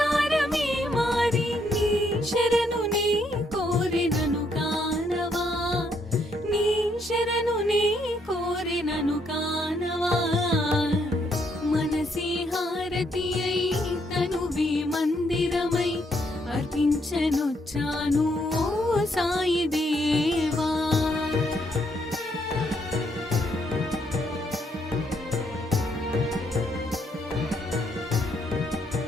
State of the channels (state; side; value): normal; both; correlation 0.73